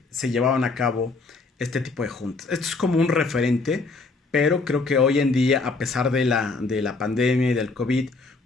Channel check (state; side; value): quieter; right; 3.8 dB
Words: llevaban a cabo este tipo de juntas. Esto es como un referente, pero creo que hoy en día, a pesar de la pandemia y del COVID,